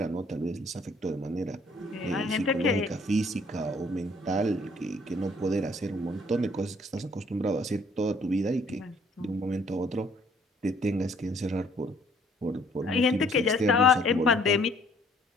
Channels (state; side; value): normal; both; correlation 0.61